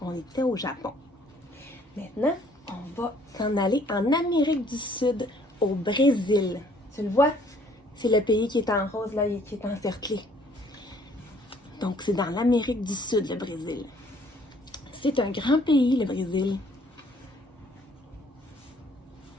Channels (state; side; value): normal; both; correlation 0.61